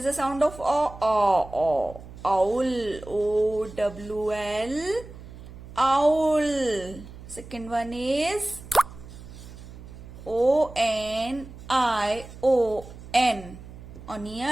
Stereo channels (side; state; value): right; noise; hum, 16 dB below the sound